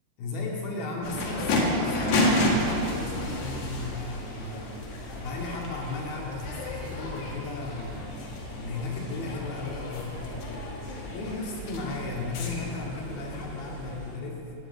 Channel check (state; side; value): late; right; 12 ms